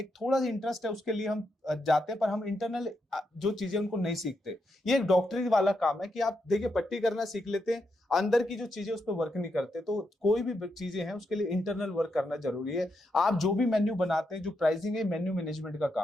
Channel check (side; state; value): both; normal; correlation 0.82